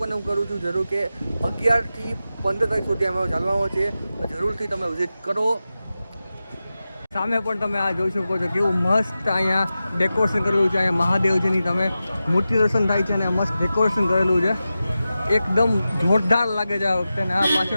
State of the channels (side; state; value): both; inverted; correlation -0.93